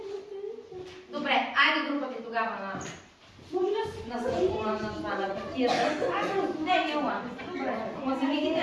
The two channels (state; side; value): identical; both; correlation 1.00